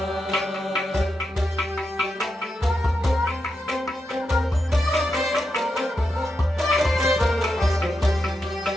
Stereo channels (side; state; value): both; normal; correlation 0.86